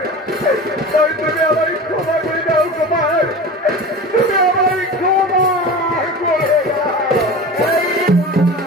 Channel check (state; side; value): normal; both; correlation 0.33